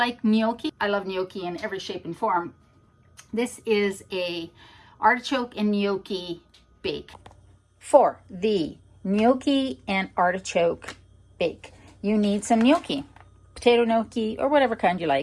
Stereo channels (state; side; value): identical; both; correlation 1.00